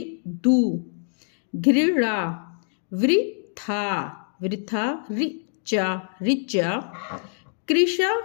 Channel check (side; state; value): right; silent; 62 dB below the other